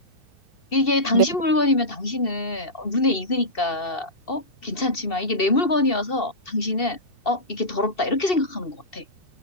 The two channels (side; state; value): right; late; 2.7 ms